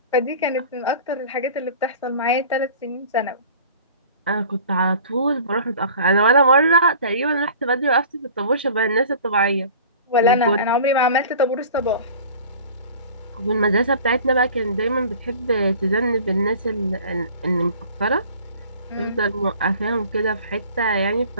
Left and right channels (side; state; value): both; inverted; correlation -0.44